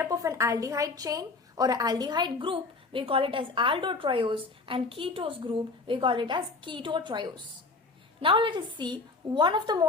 of an aldehyde chain or an aldehyde group, we call it as aldotriose, and ketose group, we call it as ketotriose. Now let us see one of the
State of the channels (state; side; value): quieter; right; 3.8 dB